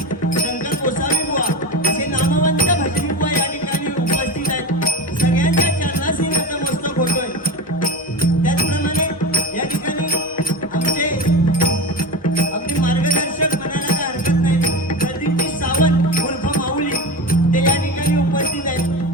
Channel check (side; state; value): both; normal; correlation 0.25